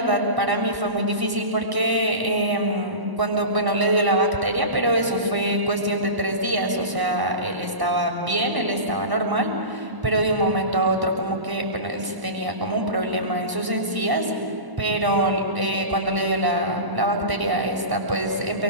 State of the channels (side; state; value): left; late; 1.0 ms